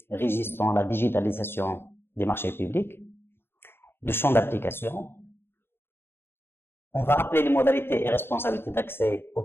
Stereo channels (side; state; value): right; late; 0.11 ms